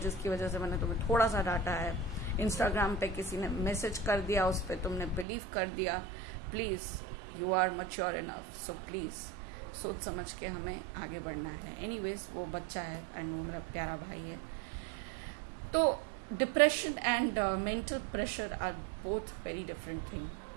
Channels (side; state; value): left; drops out; at 5.2 s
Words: वजह से मैंने तुम्हें थोड़ा सा डांटा है. इंस्टाग्राम पे किसी ने मैसेज कर दिया, उस पर तुमने बिलीव कर दिया. Please you are mature enough, so please सोच समझ के हमें आगे बढ़ना है. एनीवेज वो बच्चा है एंड वो मेरा प्यारा भाई है. तो depression and mental pressure are both very different thing.